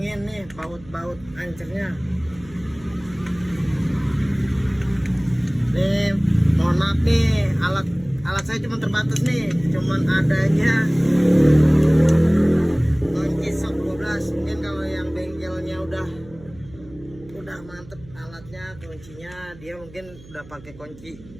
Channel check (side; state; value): right; noise; hum, 21 dB below the sound